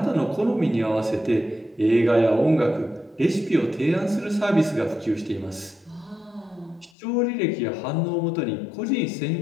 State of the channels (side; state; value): right; drops out; at 6.9 s